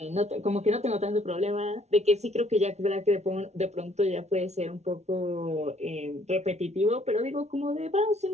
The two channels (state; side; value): late; left; 0.32 ms